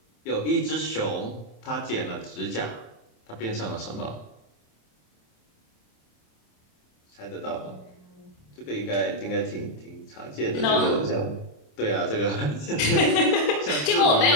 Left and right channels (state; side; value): late; right; 27 ms